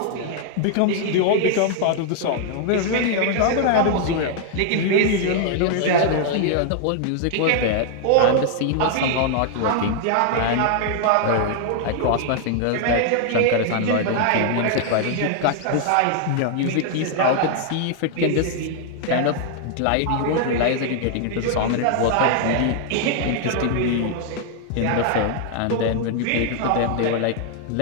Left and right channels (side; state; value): both; different; correlation 0.00